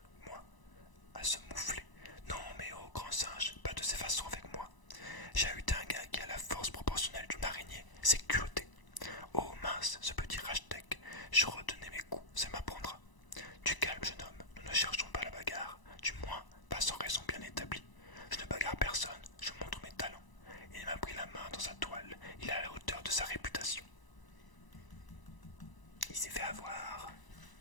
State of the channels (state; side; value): late; right; 1.0 ms